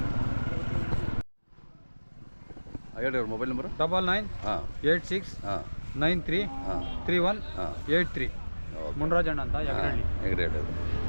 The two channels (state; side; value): inverted; both; correlation -1.00